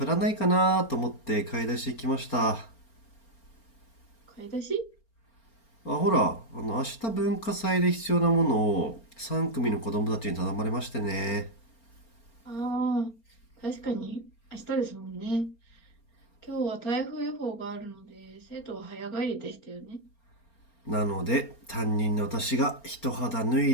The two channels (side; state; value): right; late; 4.3 ms